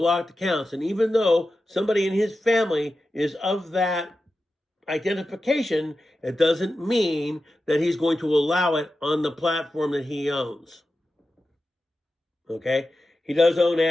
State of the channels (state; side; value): normal; both; correlation 0.92